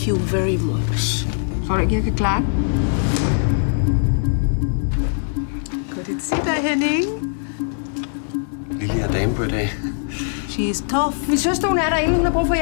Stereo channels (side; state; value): right; silent; digital silence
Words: you very much. Tror du ikke, jeg kan klare det? Godt at se dig, Henning. Lille er dame på i dag. She is tough. Min søster, hun er derinde. Hun har brug for